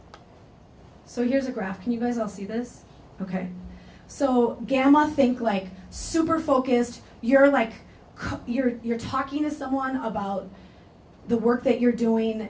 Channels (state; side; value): identical; both; correlation 1.00